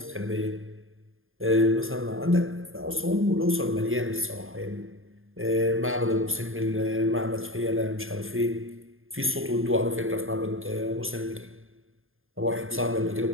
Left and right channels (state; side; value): late; left; 0.59 ms